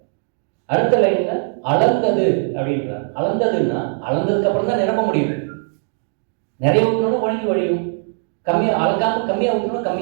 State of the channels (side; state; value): left; silent; 61 dB below the other